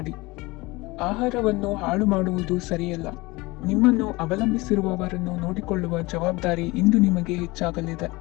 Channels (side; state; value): right; quieter; 22.6 dB